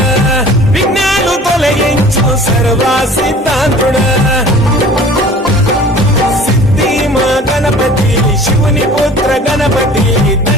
విఘ్నాలు తొలగించు సర్వా సిద్ధాంతుడ సిద్ధిమా గణపతి శివుని పుత్ర గణపతి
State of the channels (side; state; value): both; normal; correlation 0.46